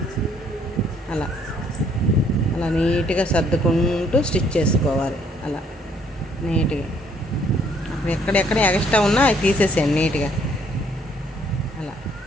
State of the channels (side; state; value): both; normal; correlation 0.64